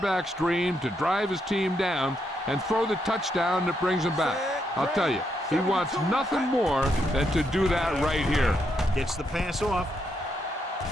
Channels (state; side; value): normal; both; correlation 0.79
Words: dream to drive his team down and throw the touchdown that brings him back. I'll tell you, he wants nothing more than to do that right here. Gets the pass off.